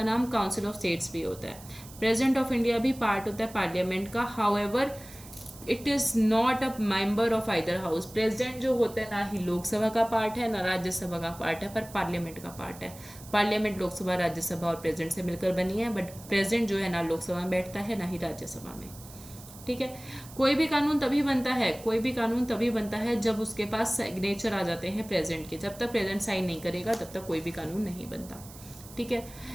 नाम काउंसिल ऑफ स्टेट्स भी होता है। प्रेसिडेंट ऑफ इंडिया भी पार्ट होता है पार्लियामेंट का। However it is not a member of either house. President जो होता है ना ही लोकसभा का पार्ट है ना राज्यसभा का पार्ट है, पर पार्लियामेंट का पार्ट है। पार्लियामेंट लोकसभा, राज्यसभा और प्रेसिडेंट से मिलकर बनी है, बट प्रेसिडेंट जो है ना लोकसभा में बैठता है ना ही राज्यसभा में, ठीक है। कोई भी कानून तभी बनता है जब उसके पास सिग्नेचर आ जाते हैं प्रेसिडेंट के। जब तक प्रेसिडेंट साइन नहीं करेगा तब तक कोई भी कानून नहीं बनता, ठीक है।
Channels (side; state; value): right; noise; hiss, 18 dB below the sound